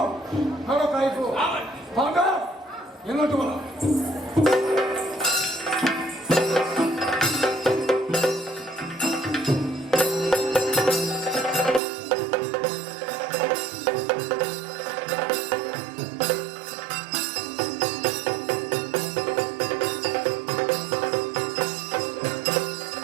ಹಣ ಕಾಯಿಪು ಭಾಗ ಎನ್ನೋಟು ಬಲ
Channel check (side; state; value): left; drops out; at 11.8 s